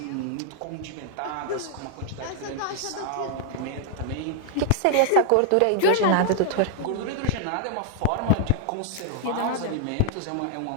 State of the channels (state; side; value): different; both; correlation -0.01